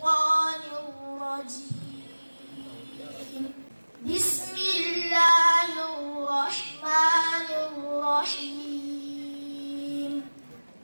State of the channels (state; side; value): inverted; both; correlation -1.00